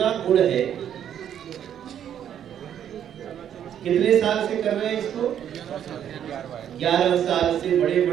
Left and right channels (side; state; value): left; quieter; 9.7 dB